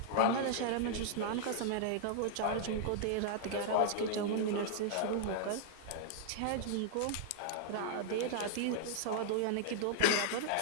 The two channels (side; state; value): both; different; correlation -0.01